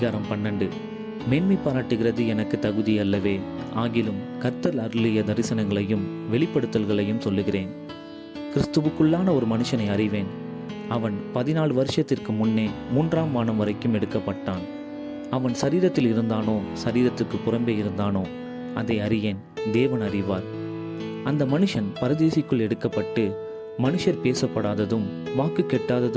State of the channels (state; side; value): identical; both; correlation 1.00